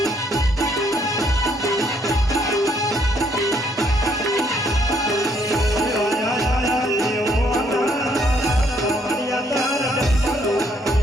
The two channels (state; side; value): normal; both; correlation 0.69